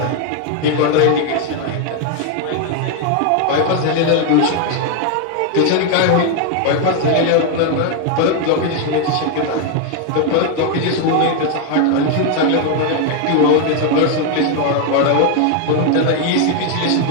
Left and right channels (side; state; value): both; different; correlation 0.01